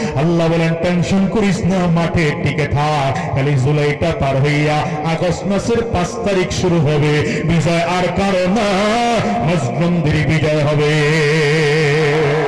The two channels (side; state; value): both; identical; correlation 1.00